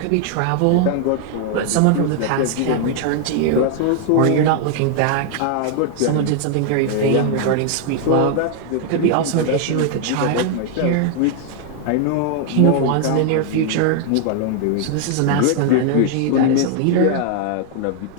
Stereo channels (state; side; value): different; both; correlation 0.00